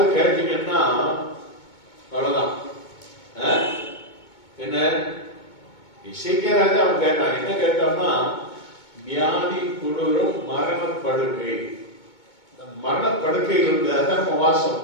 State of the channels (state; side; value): late; right; 2.2 ms